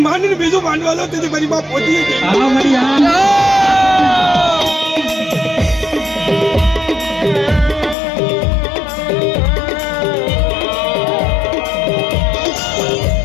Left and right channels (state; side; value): drops out; right; at 8.0 s